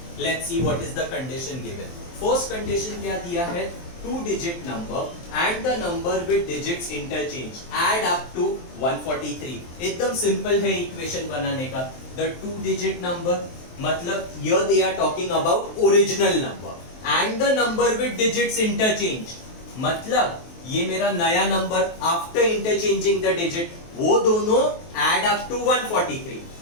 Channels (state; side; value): late; right; 23 ms